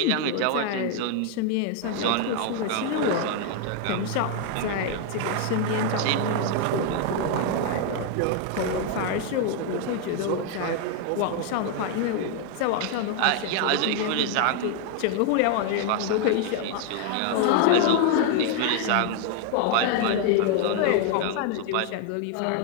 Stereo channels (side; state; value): both; different; correlation 0.00